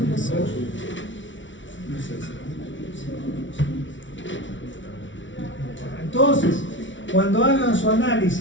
Entonces, cuando hagan su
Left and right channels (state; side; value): late; right; 0.56 ms